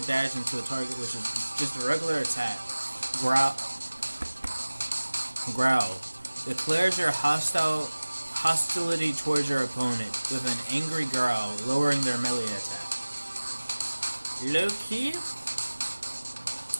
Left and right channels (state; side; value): inverted; both; correlation -1.00